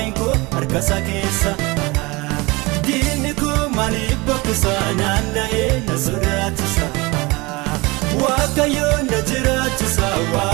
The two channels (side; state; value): left; quieter; 24.2 dB